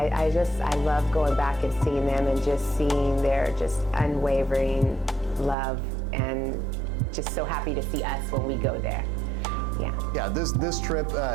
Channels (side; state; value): left; drops out; at 5.6 s